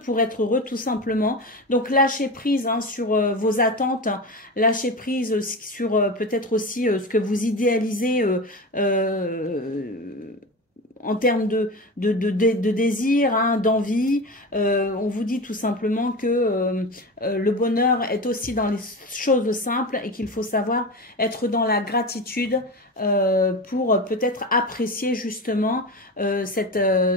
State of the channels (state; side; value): normal; both; correlation 0.25